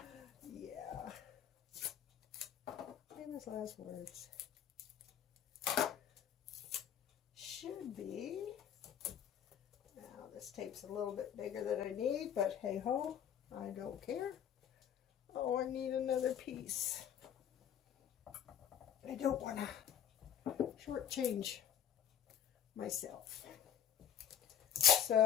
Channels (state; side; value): quieter; right; 9.5 dB